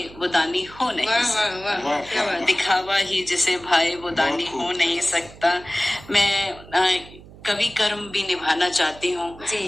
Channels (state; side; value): noise; right; hum, 20 dB below the sound